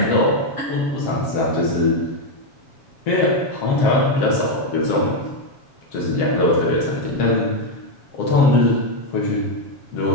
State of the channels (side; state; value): right; late; 7.6 ms